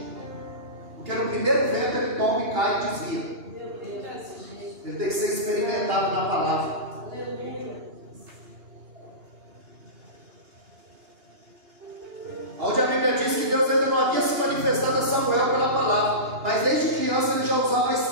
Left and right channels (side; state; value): left; late; 2.8 ms